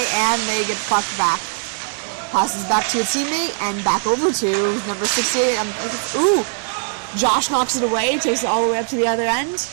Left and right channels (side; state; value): left; silent; 63 dB below the other